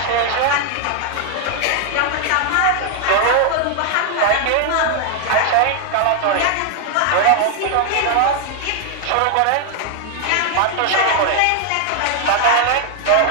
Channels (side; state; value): both; different; correlation 0.00